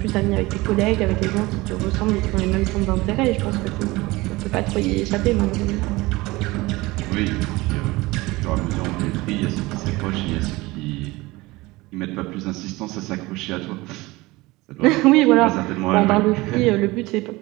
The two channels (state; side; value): quieter; left; 21.1 dB